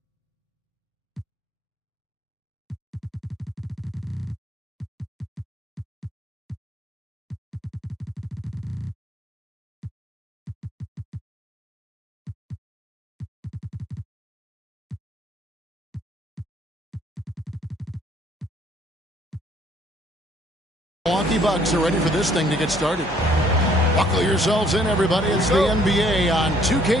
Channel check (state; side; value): normal; both; correlation 0.62